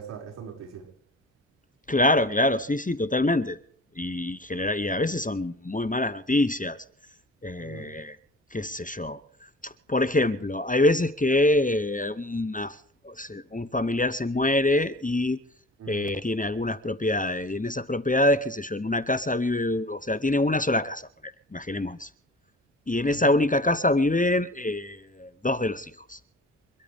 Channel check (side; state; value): both; normal; correlation 0.40